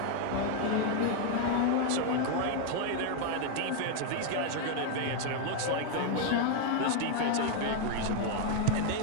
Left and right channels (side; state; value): both; different; correlation 0.01